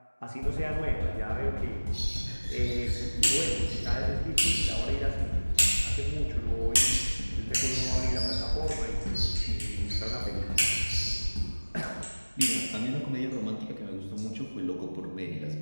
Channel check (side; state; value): both; inverted; correlation -1.00